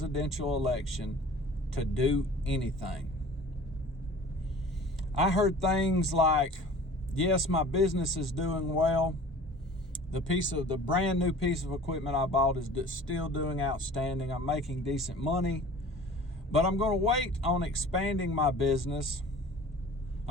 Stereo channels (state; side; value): normal; both; correlation 0.44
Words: election, to do anything. I heard things like, yes, my business is doing well. The brand new piece of equipment I bought is still doing outstanding. I'm making decent money, but I'm going to wait on expanding my business.